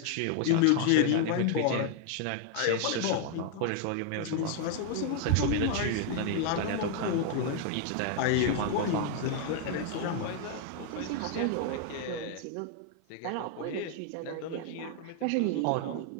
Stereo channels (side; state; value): both; different; correlation 0.00